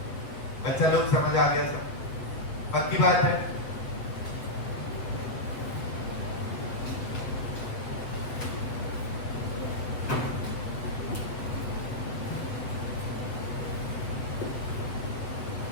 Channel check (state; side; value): late; right; 7.7 ms